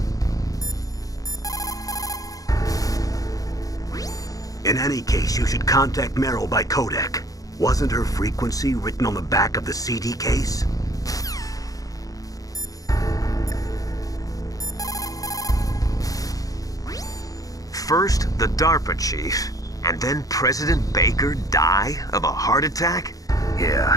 In any case, you should contact Meryl by codec. Wasn't her frequency written on the back of the CD case? First, the DARPA chief, and then President Baker die of a heart attack?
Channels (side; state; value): right; late; 0.17 ms